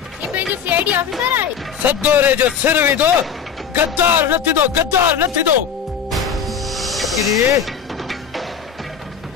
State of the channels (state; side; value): quieter; right; 7.2 dB